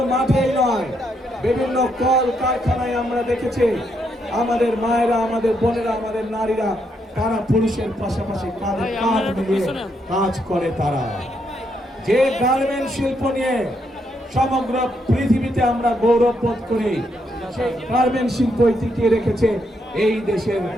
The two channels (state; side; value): normal; both; correlation 0.77